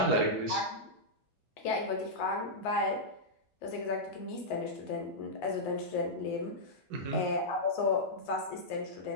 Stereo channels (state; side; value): normal; both; correlation -0.09